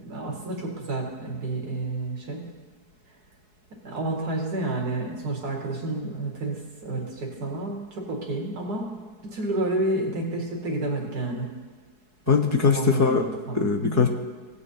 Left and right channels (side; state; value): left; late; 4.7 ms